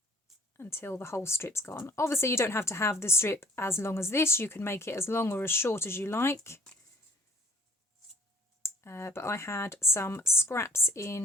until the whole strip's gone. Obviously you don't have to have the strip as long as this, you can make it as long or as short as you like. But I had some scraps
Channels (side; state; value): both; normal; correlation 0.56